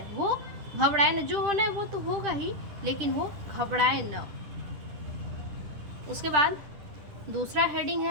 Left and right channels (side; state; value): left; late; 10 ms